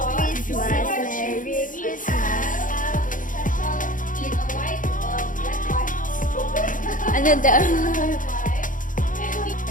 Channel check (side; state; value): right; late; 0.38 ms